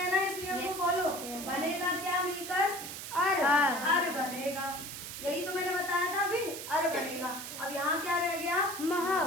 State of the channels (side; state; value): right; noise; hiss, 9 dB below the sound